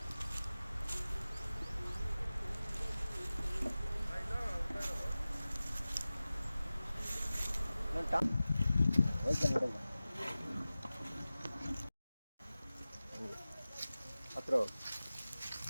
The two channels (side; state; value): both; inverted; correlation -0.96